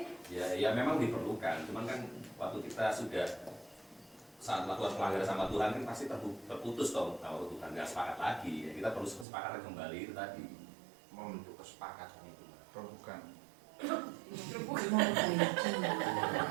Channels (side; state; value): left; drops out; at 9.2 s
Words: Ya memang diperlukan. Cuman kan waktu kita sudah saat melakukan pelanggaran sama Tuhan kan pasti terputus dong kalau Tuhan nggak sepakat lagi. Ya, kita perlu kesepakatan kembali itu tadi. Membentuk kesepakatan itu, bukan. Memperbaiki.